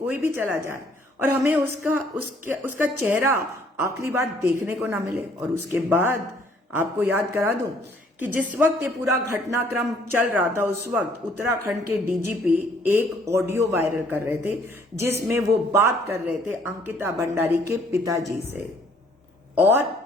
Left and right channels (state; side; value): normal; both; correlation 0.62